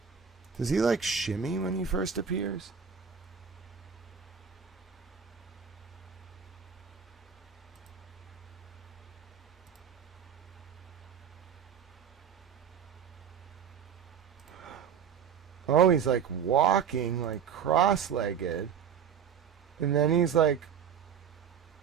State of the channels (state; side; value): quieter; left; 7.7 dB